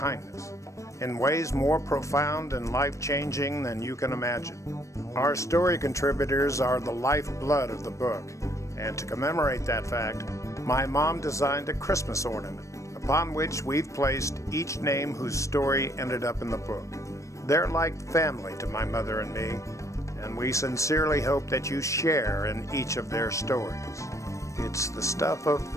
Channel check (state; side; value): late; right; 0.15 ms